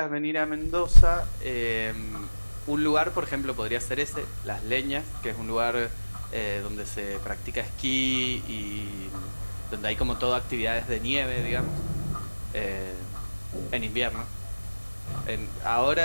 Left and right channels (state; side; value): inverted; both; correlation -1.00